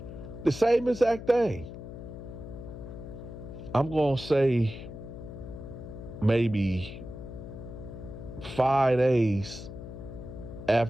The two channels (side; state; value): left; noise; hum, 11 dB below the sound